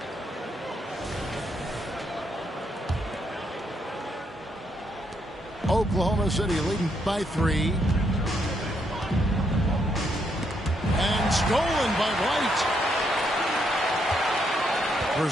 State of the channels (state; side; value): normal; both; correlation 0.76